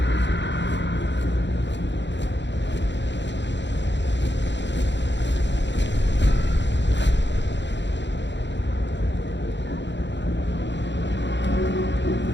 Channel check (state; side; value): late; right; 0.52 ms